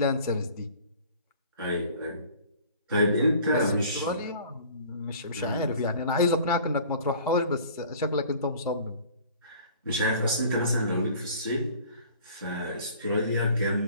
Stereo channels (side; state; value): both; inverted; correlation -0.49